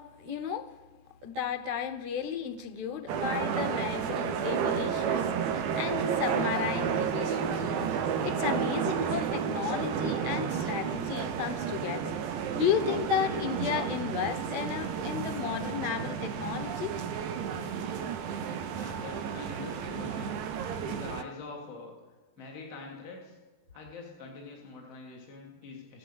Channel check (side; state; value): left; late; 16 ms